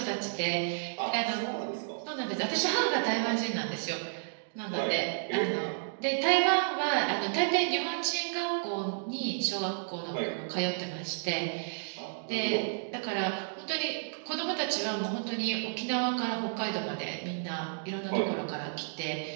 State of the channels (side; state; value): left; silent; digital silence